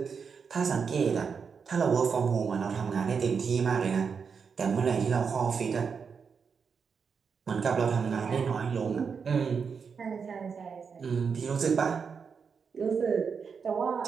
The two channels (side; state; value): left; quieter; 6.0 dB